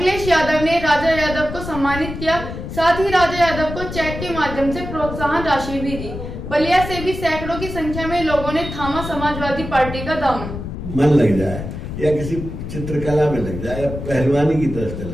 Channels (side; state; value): left; noise; rumble, 8 dB below the sound